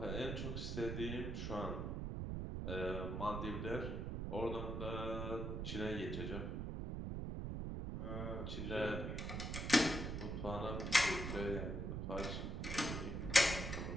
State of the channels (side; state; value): right; noise; rumble, 3 dB below the sound